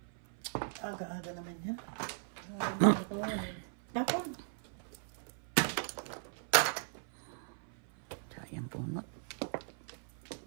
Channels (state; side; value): silent; left; 52 dB below the other